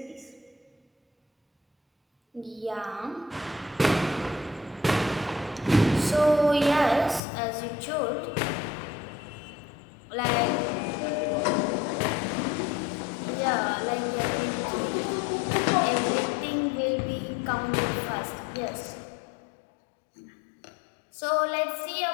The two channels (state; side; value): drops out; right; at 7.2 s